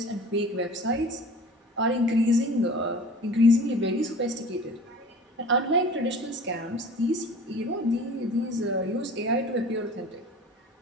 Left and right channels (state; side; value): normal; both; correlation 0.42